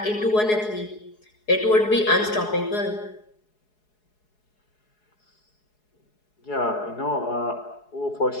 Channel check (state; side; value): late; right; 4.7 ms